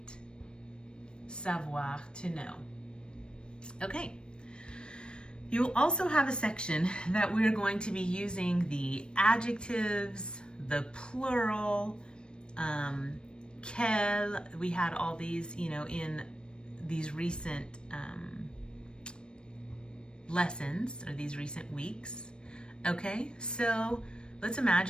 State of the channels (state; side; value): late; right; 0.054 ms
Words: Savoir, to know. Okay. You'll also have a section that we're going to be using the adjectives, the plural, quel. We had all these, in these recent lessons or these recent weeks. Okay, so let's